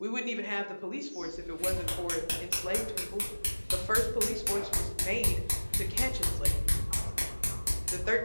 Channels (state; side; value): inverted; both; correlation -1.00